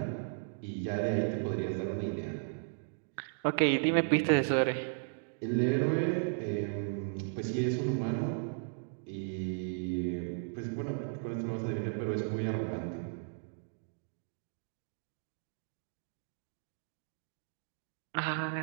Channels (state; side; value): silent; left; digital silence